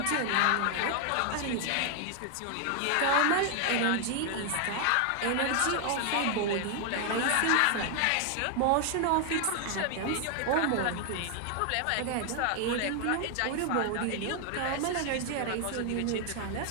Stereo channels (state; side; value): different; both; correlation 0.00